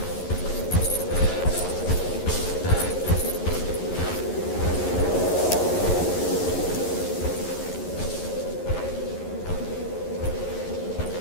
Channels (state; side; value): late; right; 11 ms